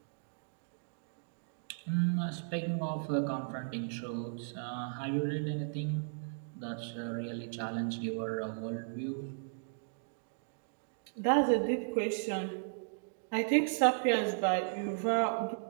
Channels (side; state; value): left; silent; digital silence